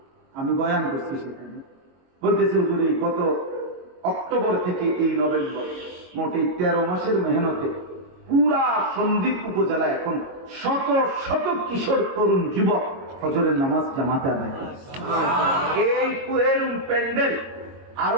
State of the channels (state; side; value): late; left; 22 ms